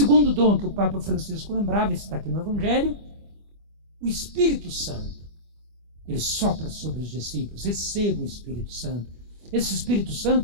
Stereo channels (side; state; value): left; late; 25 ms